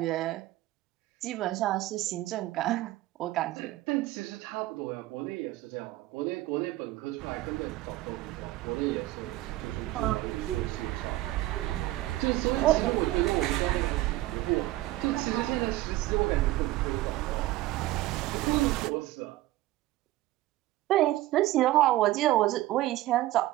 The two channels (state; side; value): quieter; left; 16.6 dB